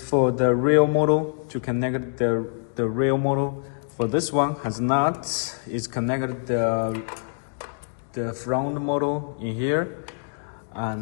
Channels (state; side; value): silent; right; digital silence